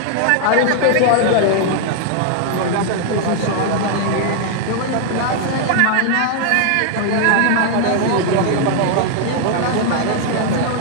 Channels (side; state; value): both; different; correlation 0.00